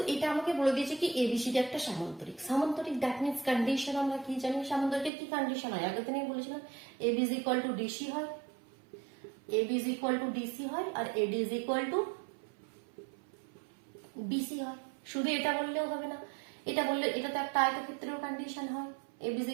এটা আমাকে বলে দিয়েছে কি এবিসিডি একটা সামান্তরিক। সামান্তরিক দ্যাট মিন্স কন্ডিশন আমরা কি জানি, সামান্তরিকের কি কন্ডিশন হয় আগের দিনে বলেছিলাম, AB is equal to DC হয়, AB is equal to DC হয়, আর AD is equal to BC হয়। শুধু এটা বললেও হবে না, এটা বললে এটা তো একটা আয়তক্ষেত্রের কন্ডিশন হয়, AB is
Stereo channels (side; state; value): left; drops out; at 5.1 s